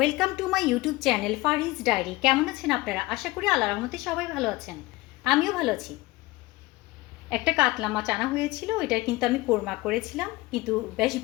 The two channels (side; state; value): right; quieter; 20.3 dB